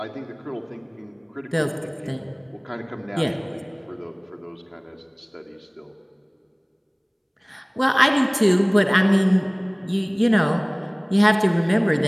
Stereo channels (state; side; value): identical; both; correlation 1.00